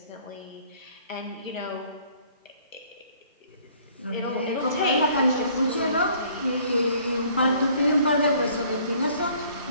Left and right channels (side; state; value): both; inverted; correlation -0.58